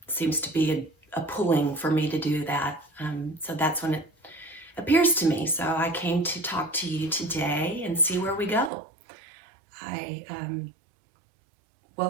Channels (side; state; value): left; drops out; at 8.7 s